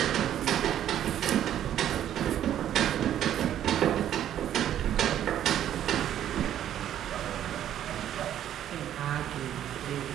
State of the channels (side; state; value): left; quieter; 11.0 dB